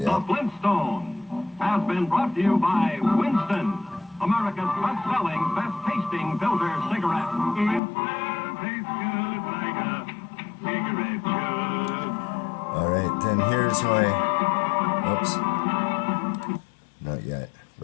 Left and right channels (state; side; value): drops out; right; at 7.8 s